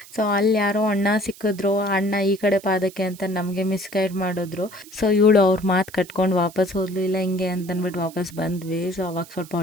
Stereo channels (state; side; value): noise; right; hiss, 20 dB below the sound